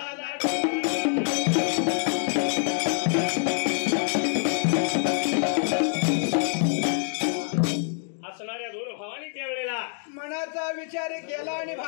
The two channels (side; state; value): right; silent; 57 dB below the other